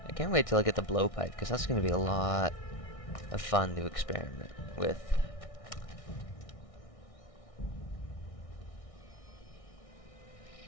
I can't wait till I get the blowpipe, because that's going to be a lot of fun to experiment with.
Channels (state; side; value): late; right; 1.6 ms